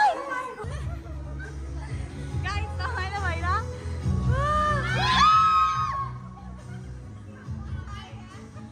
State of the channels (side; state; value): both; identical; correlation 1.00